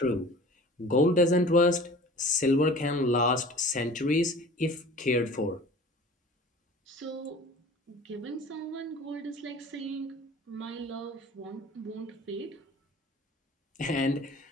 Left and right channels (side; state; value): both; normal; correlation 0.43